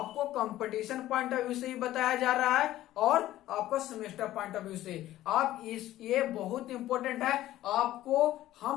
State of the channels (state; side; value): quieter; right; 14.4 dB